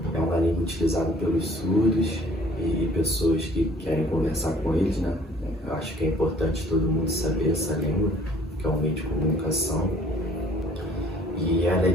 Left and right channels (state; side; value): normal; both; correlation 0.56